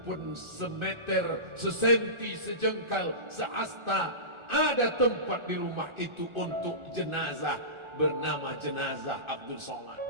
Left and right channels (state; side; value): late; left; 1.4 ms